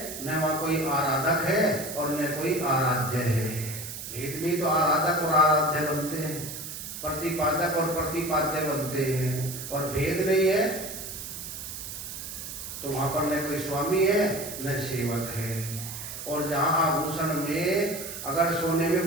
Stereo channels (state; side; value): noise; right; hiss, 9 dB below the sound